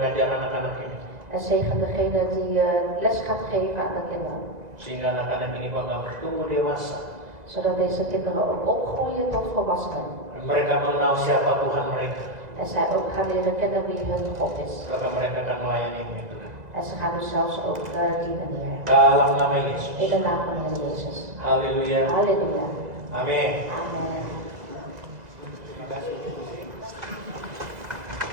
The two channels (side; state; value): left; late; 2.0 ms